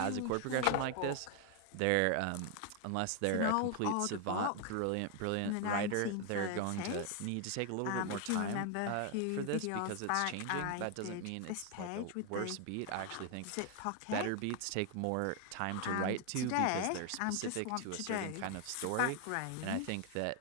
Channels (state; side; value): different; both; correlation 0.01